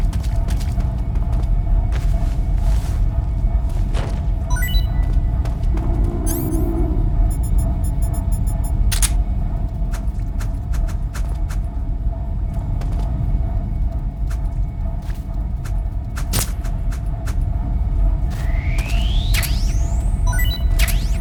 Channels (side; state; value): both; identical; correlation 1.00